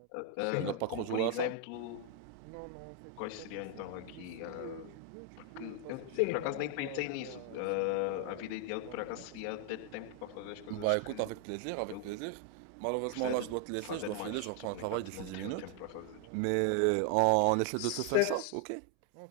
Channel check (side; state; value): both; different; correlation 0.00